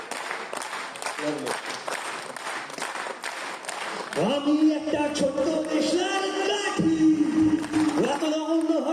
আমি একটা ছোট্ট দেশের কাঠি, এত রঙ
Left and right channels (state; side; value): identical; both; correlation 1.00